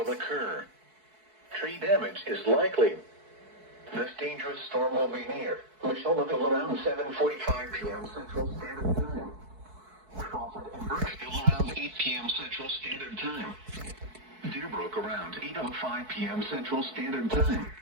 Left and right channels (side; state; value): left; late; 4.6 ms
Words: occur. Tree damage is likely. This dangerous storm will be near Michelleville around 7:45 p.m. Central Standard Time. Crawford and Birchville around 8 p.m. Central Standard Time. Deerbrook around 8:05 p.m. Central Standard Time.